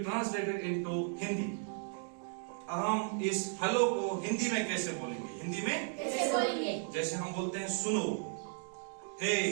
into Hindi? हम इस हेलो को हिंदी में कैसे बोलेंगे? हिंदी में कैसे बोलेंगे? जैसे हम बोलते हैं सुनो, हे,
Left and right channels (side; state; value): left; silent; 54 dB below the other